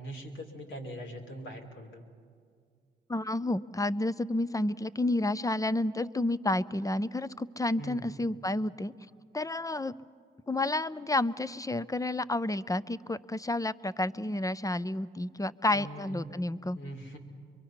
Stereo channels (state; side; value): normal; both; correlation 0.70